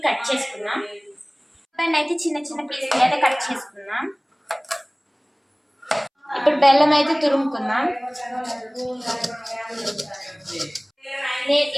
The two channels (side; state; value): both; identical; correlation 1.00